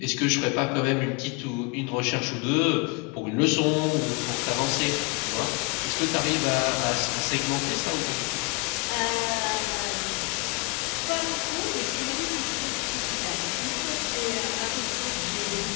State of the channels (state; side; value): quieter; right; 29.6 dB